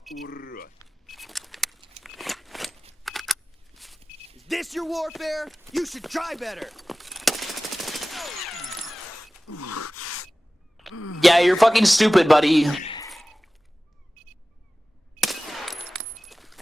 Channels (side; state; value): both; normal; correlation 0.96